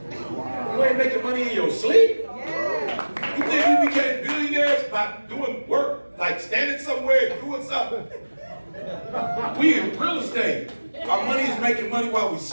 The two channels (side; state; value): both; inverted; correlation -1.00